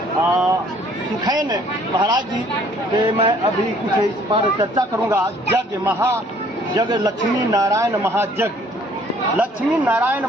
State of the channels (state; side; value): normal; both; correlation 0.59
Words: सुखैन महाराज जी के मैं अभी कुछ इस पर चर्चा करूंगा। यज्ञ लक्ष्मी नारायण महायज्ञ। लक्ष्मी नारायण